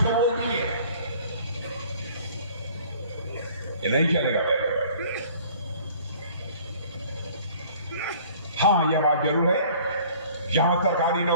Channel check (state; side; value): inverted; both; correlation -0.52